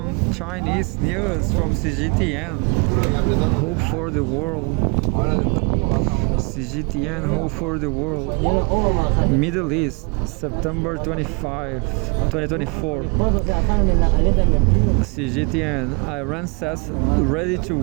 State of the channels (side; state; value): left; quieter; 33.3 dB